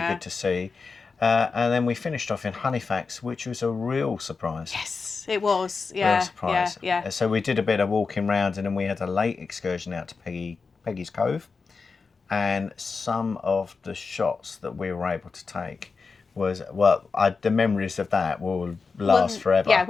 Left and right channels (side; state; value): right; quieter; 4.7 dB